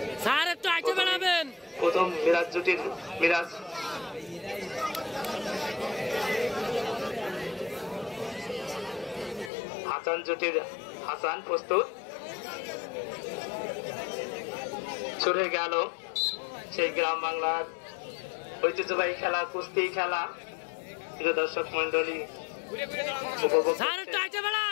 স্যার একটু আগে বাড়াবেন। প্রথম মিরাজ জুটির মিরাজ হাসান জুটির হাসান প্রস্তুত। ছুটে গেল সেই গ্রাম বাংলার ঐতিহ্যবাহী খেলা, কুস্তি খেলা। প্রিয় দর্শক মন্ডলী, উপভোগ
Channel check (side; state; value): right; drops out; at 9.5 s